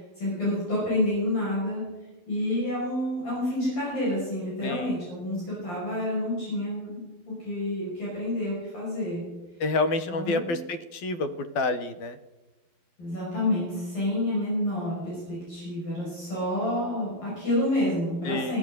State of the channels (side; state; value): right; late; 12 ms